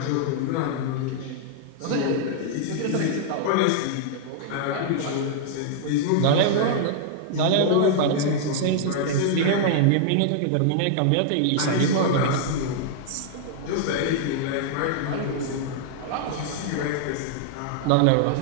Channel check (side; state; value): both; different; correlation -0.01